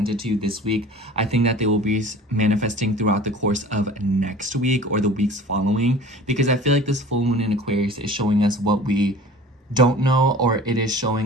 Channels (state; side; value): normal; both; correlation 0.42